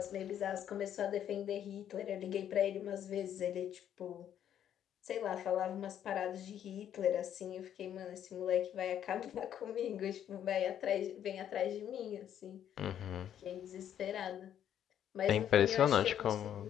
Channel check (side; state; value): right; quieter; 10.0 dB